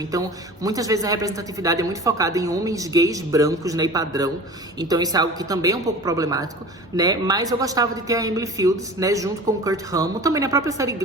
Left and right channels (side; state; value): both; normal; correlation 0.38